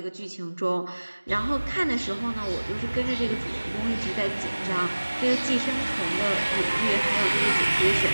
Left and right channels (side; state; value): both; inverted; correlation -1.00